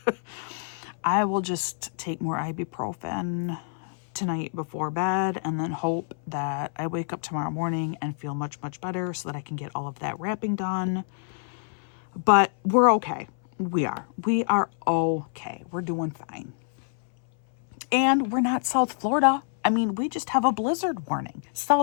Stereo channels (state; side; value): silent; right; 60 dB below the other